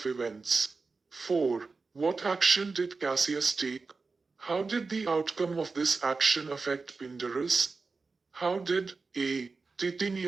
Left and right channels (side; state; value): left; quieter; 4.2 dB